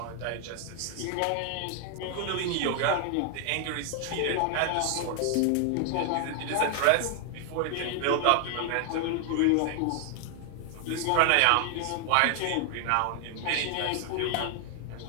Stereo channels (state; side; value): different; both; correlation 0.00